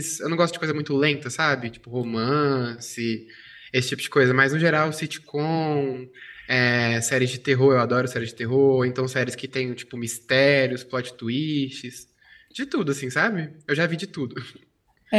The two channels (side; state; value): both; identical; correlation 1.00